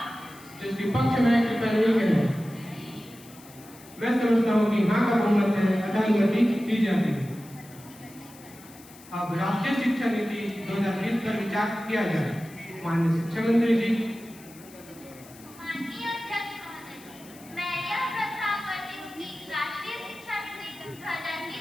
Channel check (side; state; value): left; noise; hiss, 21 dB below the sound